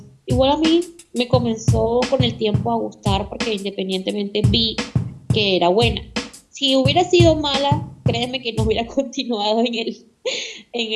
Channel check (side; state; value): both; identical; correlation 1.00